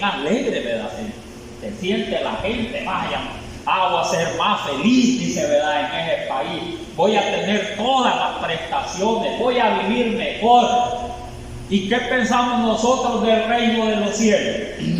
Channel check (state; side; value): identical; both; correlation 1.00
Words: alegre, ¿verdad? Se siente la gente, vaya, voy a ser más feliz, dice, ¿verdad? En ese país. Voy a tener todas las prestaciones, voy a vivir mejor. ¿Y qué pensamos nosotros del reino de los cielos?